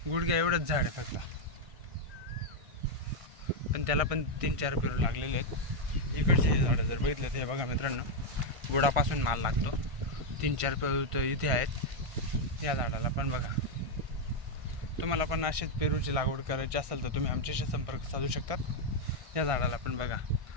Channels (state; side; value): late; left; 1.5 ms